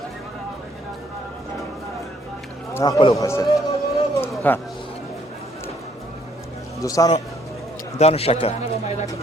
نه خپل وخسته ها دوستانو دانو شکر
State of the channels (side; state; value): both; normal; correlation 0.66